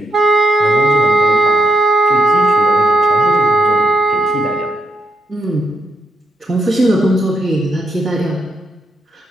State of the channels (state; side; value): normal; both; correlation 0.78